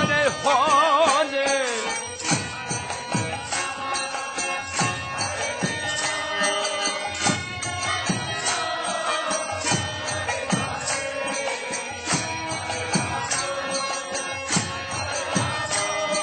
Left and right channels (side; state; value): both; identical; correlation 1.00